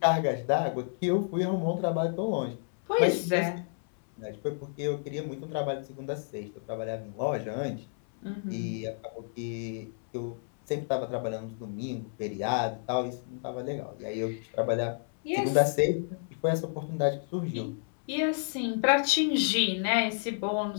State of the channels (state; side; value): silent; right; 58 dB below the other